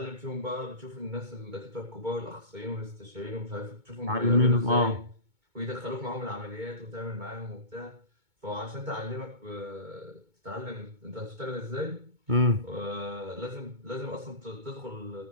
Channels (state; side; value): late; left; 2.2 ms